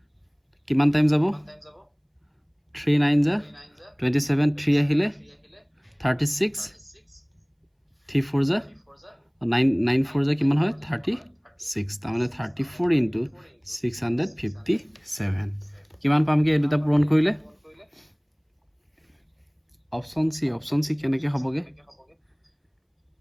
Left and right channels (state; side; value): identical; both; correlation 1.00